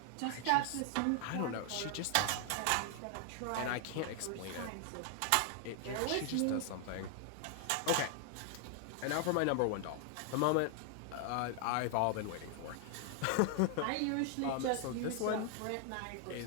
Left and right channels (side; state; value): both; different; correlation 0.00